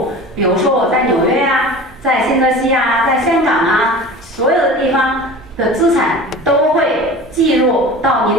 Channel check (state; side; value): normal; both; correlation 0.37